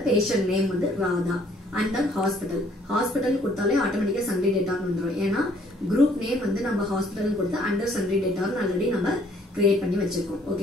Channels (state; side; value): normal; both; correlation 0.62